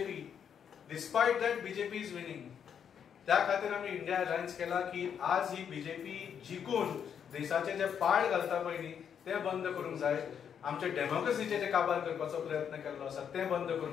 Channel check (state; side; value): quieter; right; 8.0 dB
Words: Despite that BJP is winning. त्या खातीर आम्ही इंडिया अलायन्स केला की आज ही बीजेपी जिखून देशाचे जे पाड घालता पळय ते बंद करूंक जाय. आमचे डेमोक्रेसीचे जे काबार करपाचो प्रयत्न केल्लो आसा ते बंद